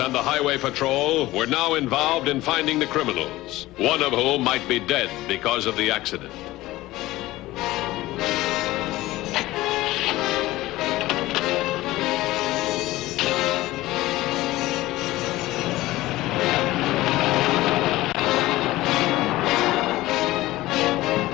and the Highway Patrol were now involved in finding the criminals, one of whom might be dead because of the accident.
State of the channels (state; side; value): quieter; right; 17.6 dB